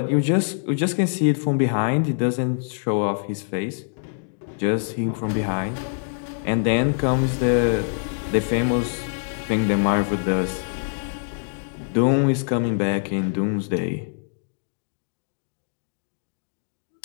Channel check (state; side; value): silent; right; digital silence